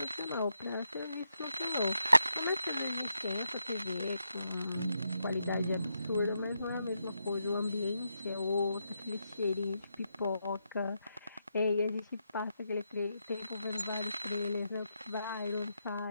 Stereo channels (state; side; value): inverted; both; correlation -0.83